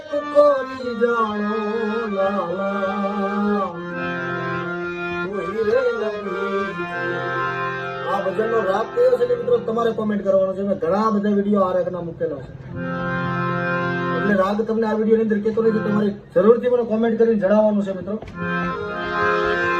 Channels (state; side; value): identical; both; correlation 1.00